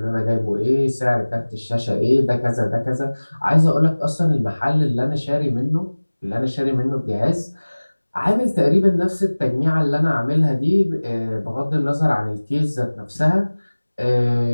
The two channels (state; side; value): inverted; both; correlation -1.00